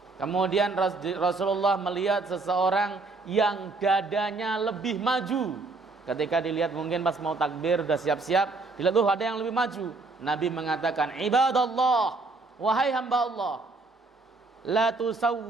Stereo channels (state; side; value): quieter; left; 3.6 dB